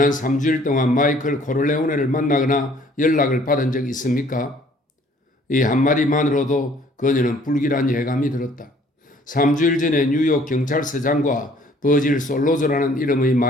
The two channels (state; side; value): normal; both; correlation 0.58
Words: 3주일 동안 마이클 코를레오네를 만나거나 연락을 받은 적 있습니까? 이 한마디만으로도 그녀는 불길한 예감이 들었다. 3주일 전에 뉴욕 경찰서장과 버질 솔로저라는 이름의